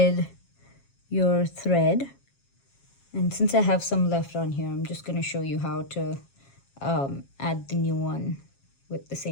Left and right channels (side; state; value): right; late; 7.3 ms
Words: your thread. And since I have some left on here, I'm just going to show you how to add the new one with the